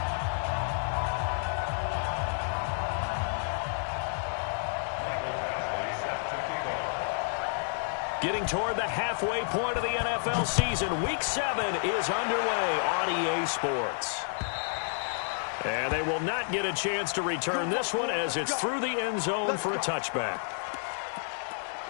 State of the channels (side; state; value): right; silent; digital silence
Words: Getting toward the halfway point of the NFL season, Week 7 is underway on EA Sports. And they will not get a chance to return this one as it's through the end zone for a touchback.